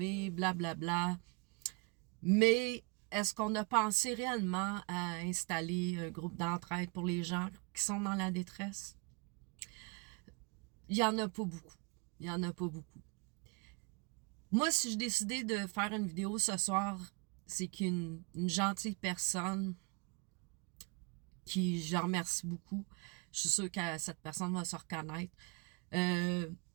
blablabla. Mais est-ce qu'on a pensé réellement à installer un groupe d'entraide pour les gens qui sont dans la détresse? Il y en a pas beaucoup. Il y en a pas beaucoup. Moi, si je décidais de faire une vidéo ce soir, c'est qu'une gentille personne qui, je remercie beaucoup, je suis sûre que cette personne va se reconnaître, de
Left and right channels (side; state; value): left; quieter; 29.5 dB